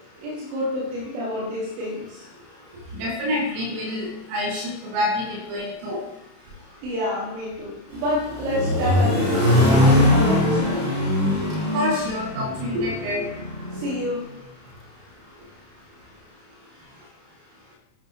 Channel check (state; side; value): late; left; 31 ms